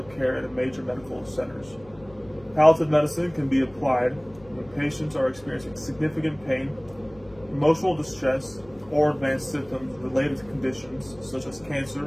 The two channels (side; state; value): left; noise; hum, 24 dB below the sound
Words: care at major medical centers. Palliative medicine can be applied when patients are experiencing significant pain, emotional distress, or advanced symptoms related to conditions such as